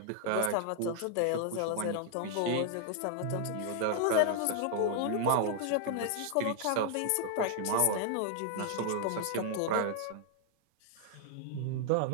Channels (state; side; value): different; both; correlation 0.00